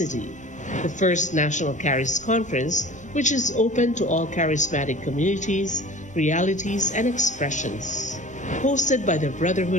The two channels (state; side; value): normal; both; correlation 0.41